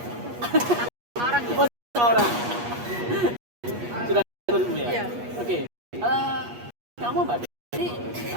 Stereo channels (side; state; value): left; late; 8.3 ms